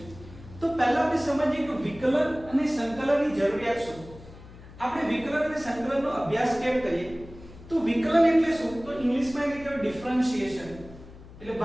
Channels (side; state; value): left; noise; hum, 18 dB below the sound